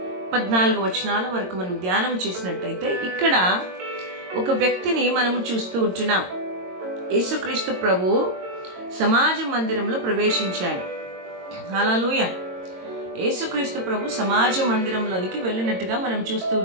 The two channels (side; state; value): left; late; 22 ms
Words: 14 వచనాల వరకు మనం ధ్యానం చేసినట్టయితే ఇక్కడ ఒక వ్యక్తిని మనము చూస్తూ ఉంటున్నాం. యేసుక్రీస్తు ప్రభు సమాజ మందిరంలో ప్రవేశించాడు. హల్లెలూయా. యేసుక్రీస్తు ప్రభు సమాజ మందిరంలోనికి వెళ్ళినట్టుగా మనం చూస్తూ